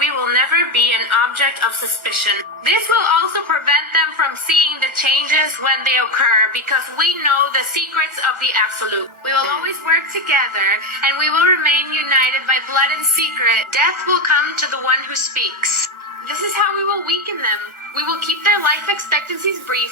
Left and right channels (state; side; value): late; left; 1.4 ms